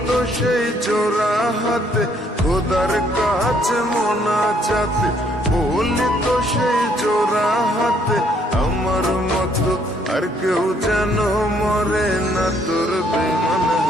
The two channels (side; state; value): both; normal; correlation 0.67